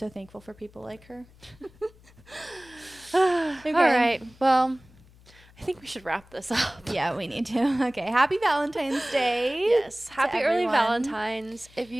thankful for people like her. Okay. All right. Well, I think we should wrap this up. Yeah, we need to. Okay. Happy Valentine's Day. Yes. Happy early Valentine's. If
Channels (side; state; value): left; noise; hum, 26 dB below the sound